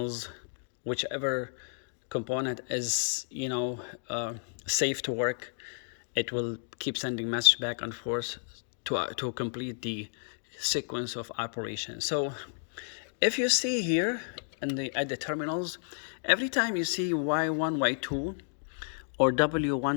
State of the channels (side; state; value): right; silent; digital silence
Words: whichever component is, you know, safe to work, it will keep sending message back and forth to complete the sequence of operation. So if you see here at the terminals, every time you see Y1, Y2 or